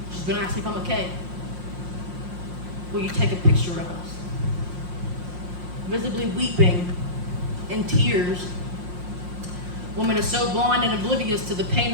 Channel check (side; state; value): left; late; 5.6 ms